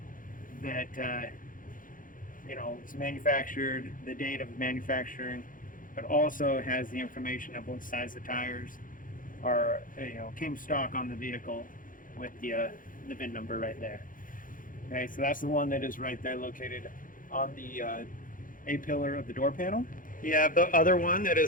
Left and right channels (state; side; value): late; right; 0.39 ms